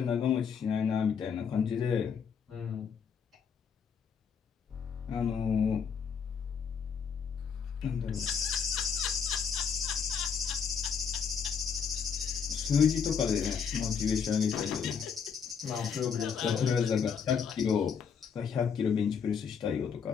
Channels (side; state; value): right; quieter; 6.7 dB